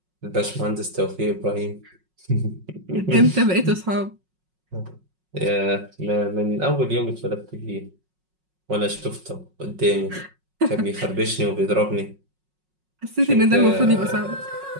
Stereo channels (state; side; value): late; left; 5.5 ms